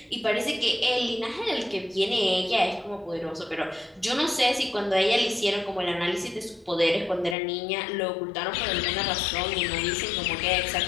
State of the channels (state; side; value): drops out; right; at 7.4 s